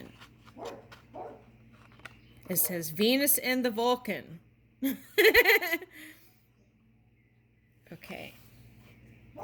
It says Venus and the Vulcan. Okay.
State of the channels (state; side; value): identical; both; correlation 1.00